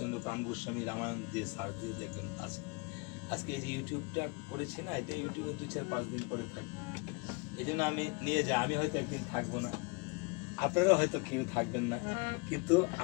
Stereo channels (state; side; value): quieter; right; 29.7 dB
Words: প্রাণ গোস্বামী রামায়ণ দিয়ে সার্চ দিয়ে দেখবেন আছে। আজকে এই যে ইউটিউবটা করেছি না, এটা ইউটিউবে 2-4-5 দিন পরে থাকবে, এই জন্য আমি নিয়ে যাই। আমি হয়তো একদিন থাকবো না, আপনারা হয়তো কেউ থাকবেন না, কিন্তু